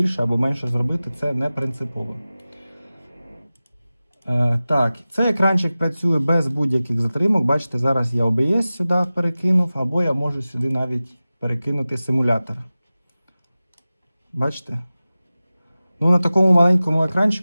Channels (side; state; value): both; inverted; correlation -0.96